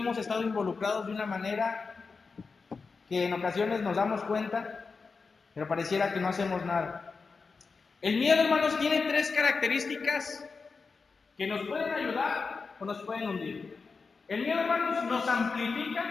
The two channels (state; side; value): quieter; right; 4.7 dB